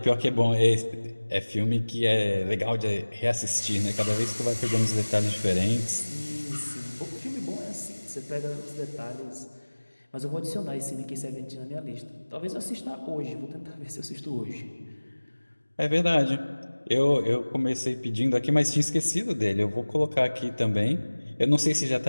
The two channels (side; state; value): both; inverted; correlation -1.00